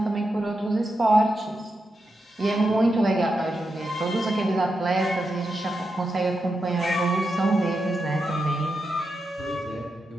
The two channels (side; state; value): both; normal; correlation 0.87